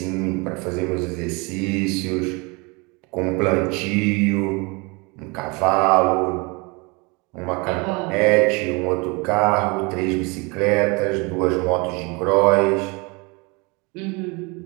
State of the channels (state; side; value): quieter; left; 28.2 dB